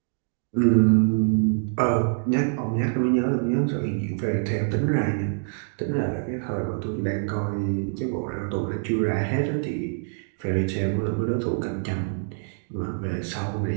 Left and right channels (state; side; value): silent; left; digital silence